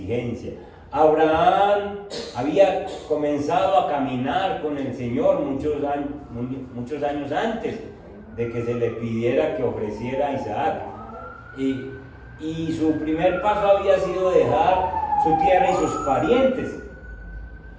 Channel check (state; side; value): identical; both; correlation 1.00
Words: Abraham había comenzado a caminar con el Señor muchos años antes de que se le pidiera que ofreciera a Isaac. Y su primer paso había sido dejar su tierra y sus parientes